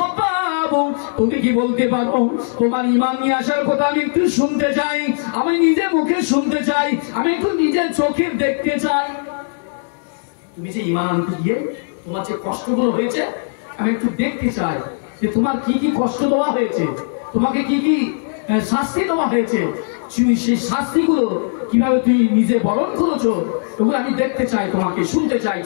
তুমি কি বলতে পারো তোমার ঈমান নিয়ে আসার কথা আমি একটু শুনতে চাই, আমি নিজে মুখে শুনতে চাই, আমি একটু নিজের চোখে দেখতে চাই। তুমি যে ঈমান আনতে গিয়ে তোমার যে কষ্টগুলো হয়েছে আমি একটু দেখতে চাই যে তোমার কি কি কষ্ট দেওয়া হয়েছে, তোমাকে কি কি শাস্তি দেওয়া হয়েছে, সেই শাস্তিগুলো কিভাবে তুমি নিজে বরণ করেছো, ওগুলো আমি দেখতে চাই, তোমাকে শুনতে চাই,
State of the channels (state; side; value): silent; right; digital silence